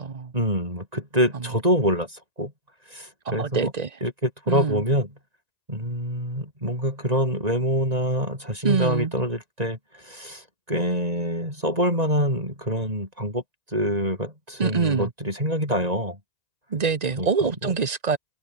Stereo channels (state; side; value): late; left; 1.9 ms